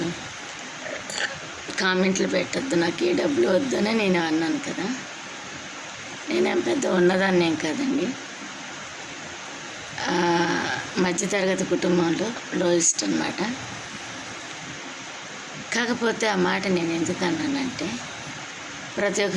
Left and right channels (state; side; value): identical; both; correlation 1.00